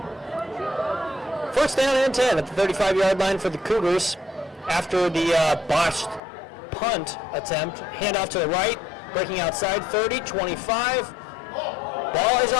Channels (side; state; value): right; drops out; at 6.2 s